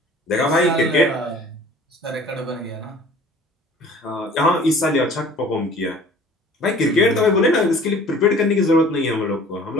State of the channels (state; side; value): normal; both; correlation 0.48